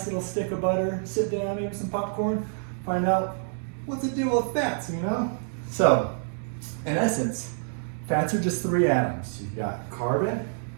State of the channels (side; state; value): left; silent; digital silence